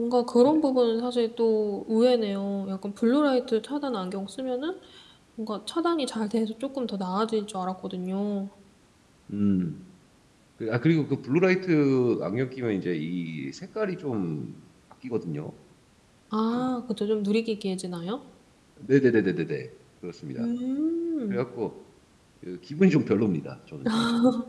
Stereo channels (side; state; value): both; identical; correlation 1.00